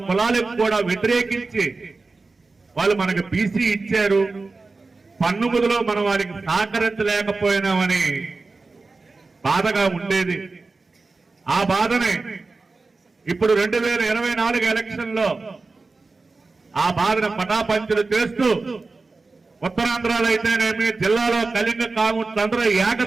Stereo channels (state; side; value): quieter; left; 3.8 dB